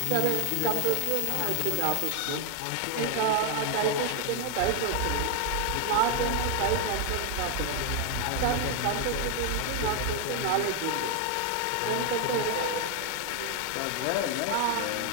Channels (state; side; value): different; both; correlation 0.01